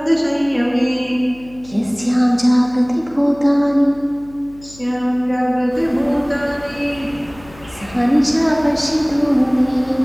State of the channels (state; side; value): noise; left; hum, 22 dB below the sound